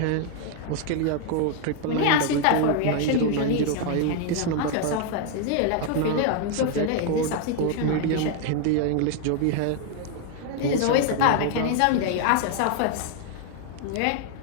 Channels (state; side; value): different; both; correlation 0.00